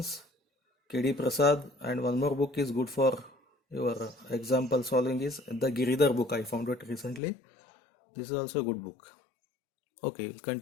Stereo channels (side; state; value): right; drops out; at 7.2 s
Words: KD Prasad, and one more book is good for your example solving is the Giridhar book. I found it recently. This is also a good book. Okay, we'll